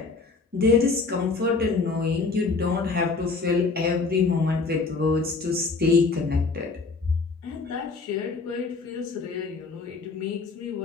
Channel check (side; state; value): right; quieter; 4.2 dB